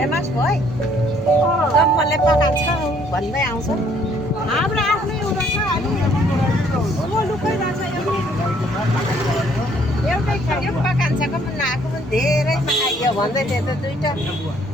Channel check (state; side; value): normal; both; correlation 0.63